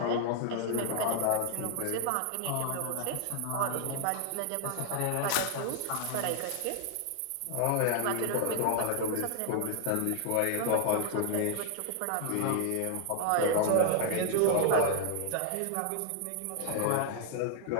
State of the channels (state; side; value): different; both; correlation 0.00